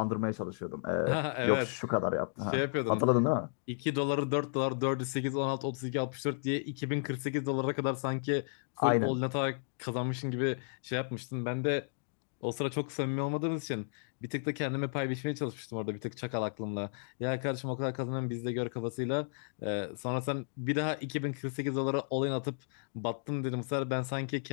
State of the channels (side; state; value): right; silent; digital silence